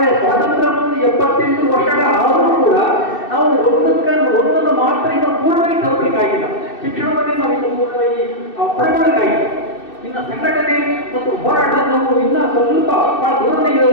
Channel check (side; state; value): right; late; 2.6 ms